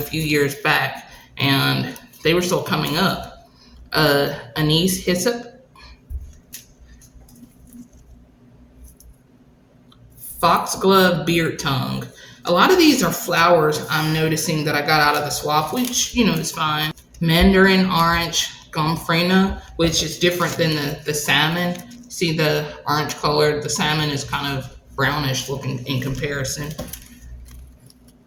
years back, and they were still coming up. Anise hyssop. Foxglove beard tongue. A lot of these are flowers I'm noticing that I got out of the swap, which, you know, is fine. Mandarin orange gomfrina, which is different than the salmon. See the orange color? The salmon is kind of brownish looking in comparison.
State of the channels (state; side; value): identical; both; correlation 1.00